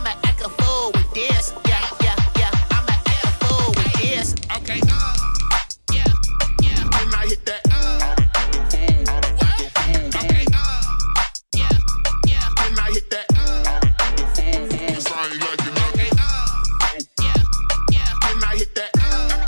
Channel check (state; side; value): inverted; both; correlation -1.00